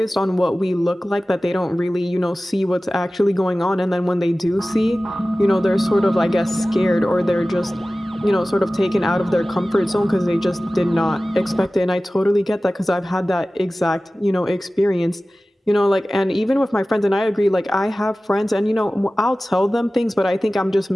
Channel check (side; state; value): both; normal; correlation 0.97